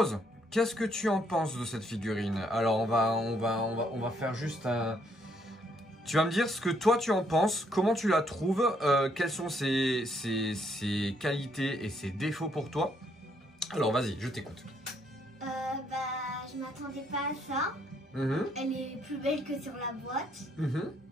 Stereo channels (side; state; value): both; normal; correlation 0.71